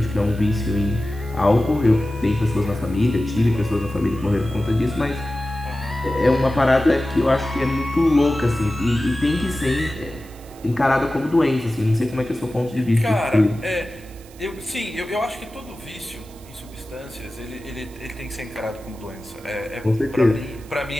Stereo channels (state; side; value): noise; right; hiss, 24 dB below the sound